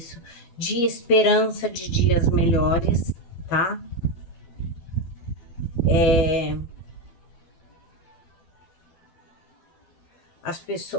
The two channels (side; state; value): right; late; 12 ms